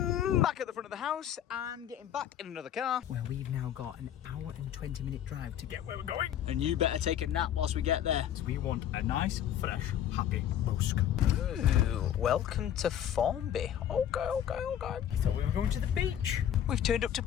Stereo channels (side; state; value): right; quieter; 10.3 dB